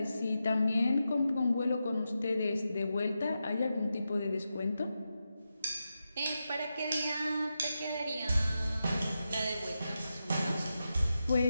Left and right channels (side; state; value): both; inverted; correlation -0.89